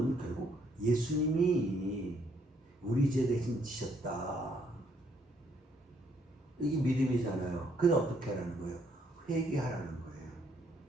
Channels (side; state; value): both; normal; correlation 0.69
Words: 결국 예수님이 우리 죄 대신 지셨다. 이게 믿음이잖아요. 그래서 어떻게 하라는 거예요? 회개하라는 거예요.